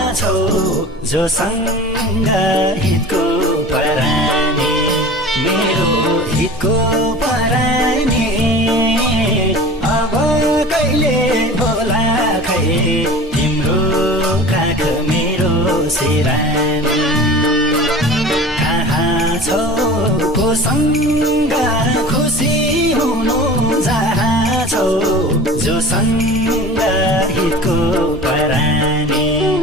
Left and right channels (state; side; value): normal; both; correlation 0.39